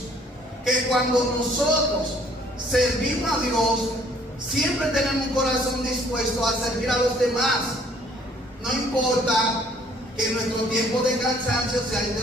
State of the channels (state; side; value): normal; both; correlation 0.60